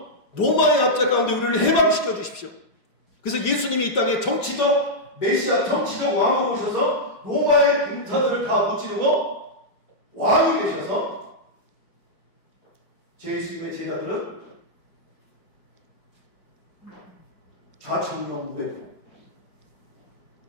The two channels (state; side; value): late; right; 5.1 ms